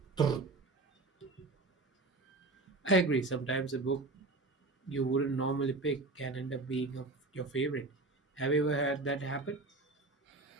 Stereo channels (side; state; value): left; quieter; 3.3 dB